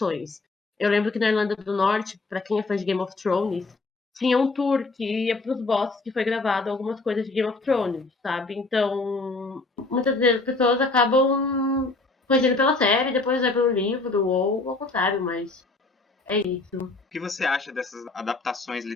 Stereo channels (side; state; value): right; quieter; 3.4 dB